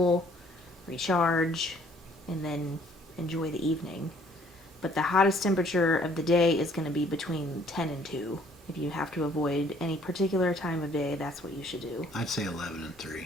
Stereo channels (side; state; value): both; normal; correlation 0.60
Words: recharge, and then enjoy the evening. But the hottest temperature of the day is going to be between 10 and 2. If you have to avoid any particular time of day, that's what you should do. I'd say 11 and